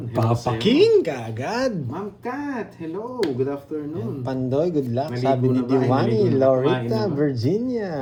ka agad. Ma'am Kat, hello. Good afternoon. Pandoy, good luck. Maligo Sabi ni na ba? Ay, Diwani, maligo na. Loretta, Kumain na ba? Virginia,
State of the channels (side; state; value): both; identical; correlation 1.00